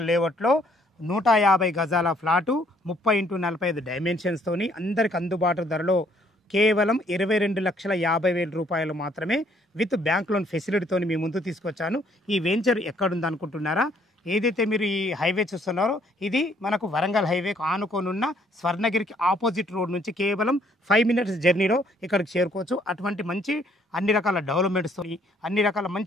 లేఅవుట్లో 150 గజాల ఫ్లాటు 30x45 డైమెన్షన్స్తోని అందరికి అందుబాటు ధరలో కేవలం 22,50,000 రూపాయలు మాత్రమే విత్ బ్యాంక్ లోన్ ఫెసిలిటీతో మీ ముందు తీసుకొచ్చాను. ఈ వెంచర్ ఎక్కడుంది అనుకుంటున్నారా? ఏదైతే మీరు ఈ హైవే చూస్తున్నారో ఇది మనకు వరంగల్ హైవేకు ఆనుకోనున్న స్వర్ణగిరికి ఆపోజిట్ రోడ్ నుంచి కేవలం 5 మినిట్స్ జర్నీలో ఇక్కడికి చేరుకోవచ్చు. అటువంటి మంచి అన్ని రకాల డెవలప్మెంట్స్తో అన్ని రకాల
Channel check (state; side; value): normal; both; correlation 0.65